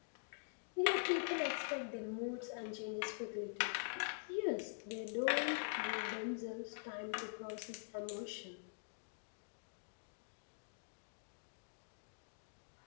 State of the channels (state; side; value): silent; right; digital silence